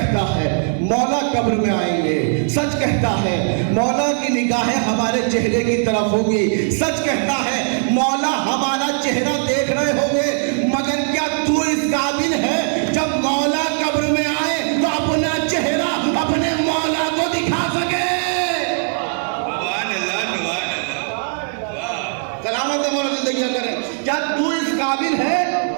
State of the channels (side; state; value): left; silent; 66 dB below the other